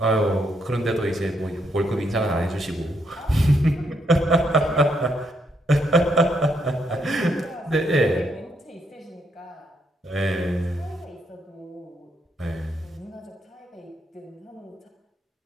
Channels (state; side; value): normal; both; correlation 0.76